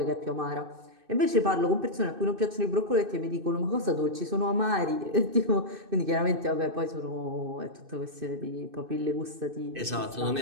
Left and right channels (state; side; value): late; left; 2.6 ms